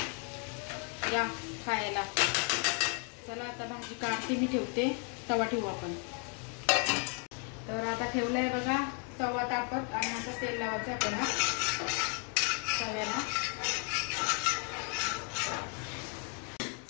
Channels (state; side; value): quieter; right; 39.3 dB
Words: या खायला. चला आता भाजी काढते मी, ठेवते. तवा ठेवू आपण. तर आता ठेवलाय बघा तवा तापत, आणि आता तेल लावायचं आपल्याला तव्याला.